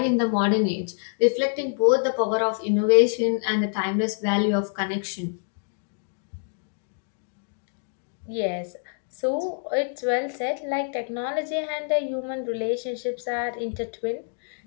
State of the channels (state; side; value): silent; right; digital silence